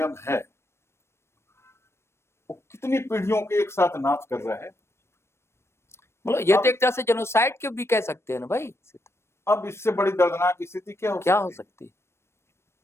है वो कितनी पीढ़ियों के एक साथ नाश कर रहा है। मतलब ये तो एक तरह से जेनोसाइड के भी कह सकते हैं ना भाई। अब इससे बड़ी दर्दनाक स्थिति क्या हो सकती है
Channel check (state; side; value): late; right; 0.13 ms